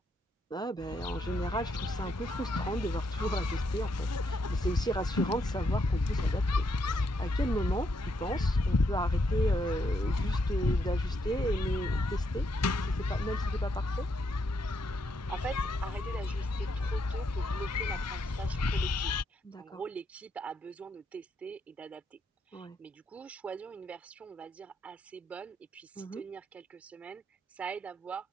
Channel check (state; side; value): normal; both; correlation 0.77